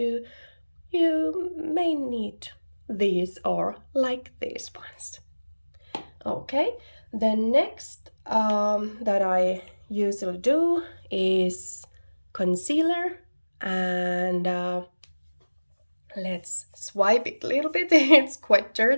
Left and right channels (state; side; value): inverted; both; correlation -1.00